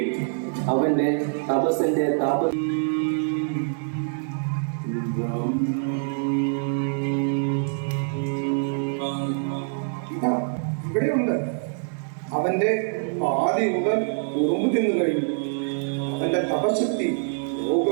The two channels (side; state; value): left; silent; digital silence